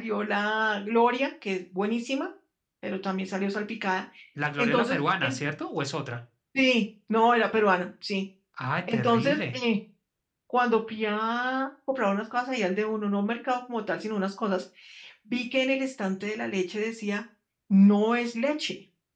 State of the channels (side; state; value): both; identical; correlation 1.00